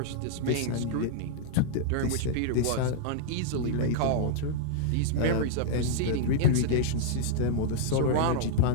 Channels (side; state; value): both; different; correlation -0.01